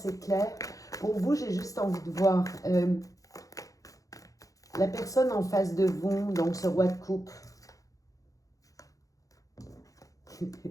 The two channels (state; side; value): late; right; 0.17 ms